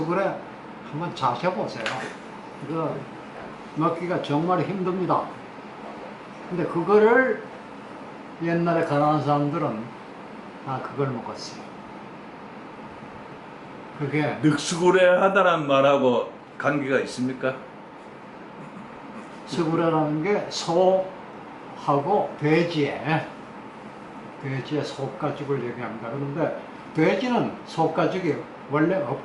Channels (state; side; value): identical; both; correlation 1.00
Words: 한번 자셔보세요. 이거 먹기가 정말 힘듭니다. 근데 그거를 옛날에 가난한 사람들은 다 그걸 먹었어요. 그게 늑수구레 하다란 말하고 관계가 있습니까? 수구레라는 게 소하고 돼지의 속가죽을 얘기합니다. 그런데 돼지는 속가죽이 원래